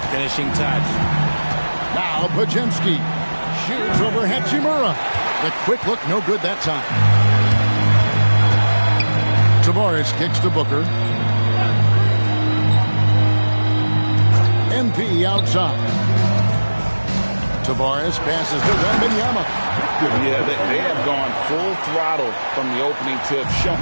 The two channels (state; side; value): inverted; both; correlation -1.00